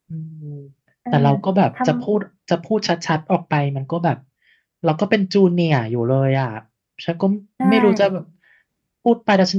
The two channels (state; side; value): identical; both; correlation 1.00